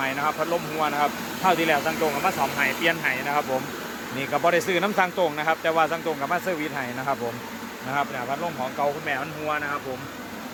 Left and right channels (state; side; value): identical; both; correlation 1.00